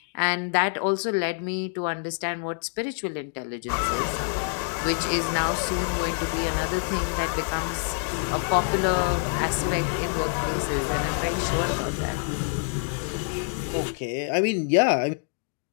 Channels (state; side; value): silent; right; 55 dB below the other